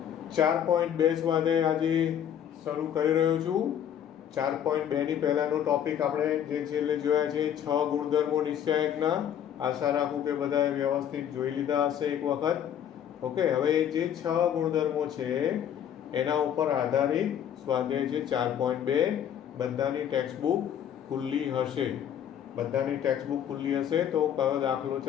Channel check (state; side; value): quieter; right; 9.6 dB